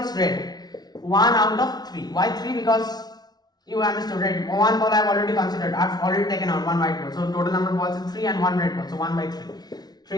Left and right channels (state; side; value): late; right; 0.19 ms